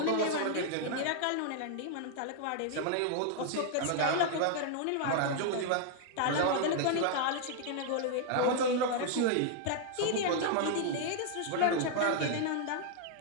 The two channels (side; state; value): both; different; correlation 0.00